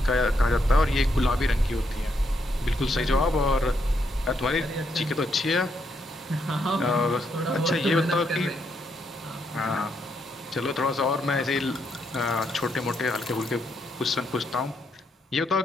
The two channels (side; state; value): both; normal; correlation 0.78